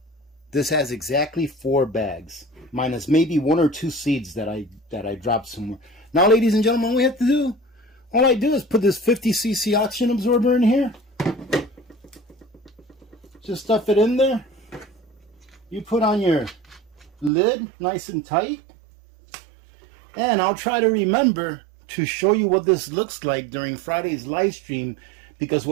This has exactly 4 bags, minus maybe 1 or 2 seeds that I dropped somewhere. Now, ladies and gentlemen, all we have to do, all I do is put this 50cc oxygen absorber in here. Just stuff it in there. You put on your lid nice and tight. And I'll try to remember to show you what this looks like during Friday's live stream, because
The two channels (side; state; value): left; drops out; at 17.3 s